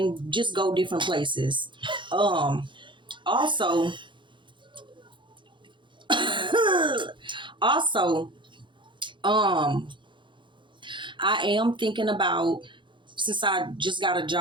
just go different places. Also, also, I am thinking about, since I just got a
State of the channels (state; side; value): late; left; 0.23 ms